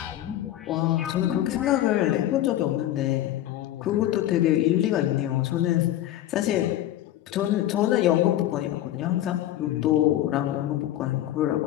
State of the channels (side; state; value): right; quieter; 13.4 dB